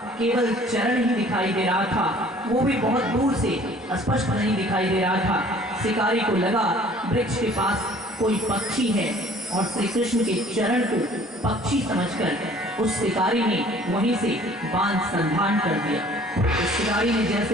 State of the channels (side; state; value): both; normal; correlation 0.53